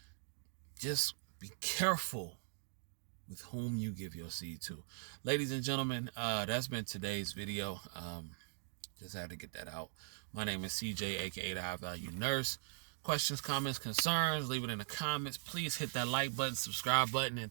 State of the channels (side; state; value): left; silent; digital silence